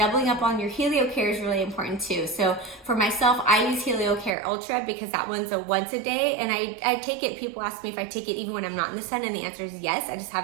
up on your Heliocare is really important too. So for myself, I use Heliocare Ultra because that one's a once a day, and I take it, people ask me if I take it even when I'm not in the sun, and the answer is yes. I just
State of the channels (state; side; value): drops out; left; at 4.3 s